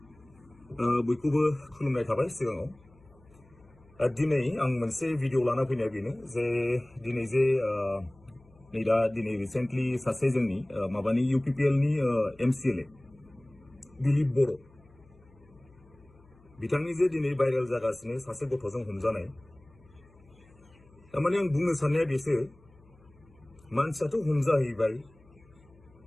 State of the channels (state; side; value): noise; left; hum, 28 dB below the sound